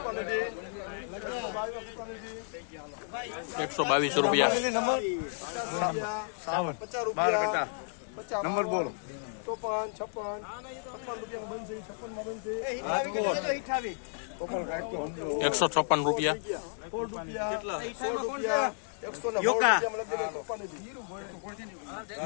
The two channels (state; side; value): silent; right; 56 dB below the other